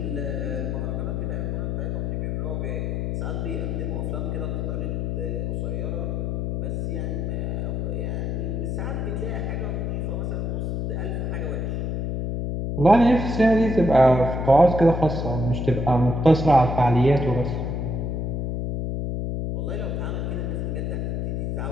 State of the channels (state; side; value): noise; left; hum, 1 dB below the sound